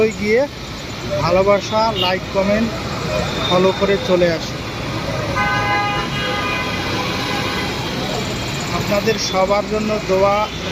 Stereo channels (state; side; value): identical; both; correlation 1.00